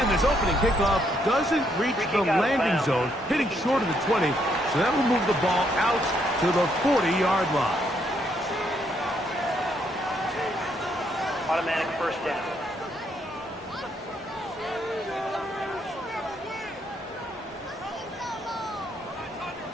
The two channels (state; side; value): normal; both; correlation 0.73